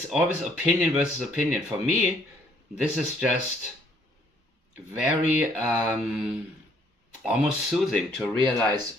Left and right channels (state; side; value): normal; both; correlation 0.64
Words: always opinion versus opinion. For me, this is just very almost soothing to realize,